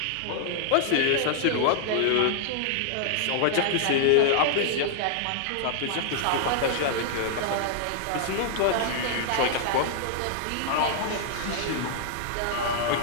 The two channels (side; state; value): both; different; correlation -0.01